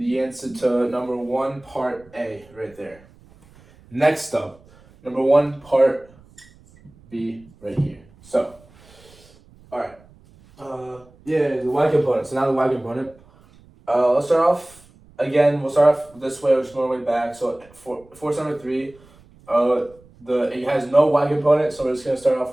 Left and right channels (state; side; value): noise; right; rumble, 27 dB below the sound